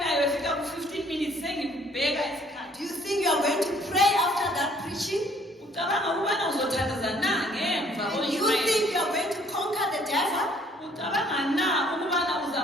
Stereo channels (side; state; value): both; normal; correlation 0.60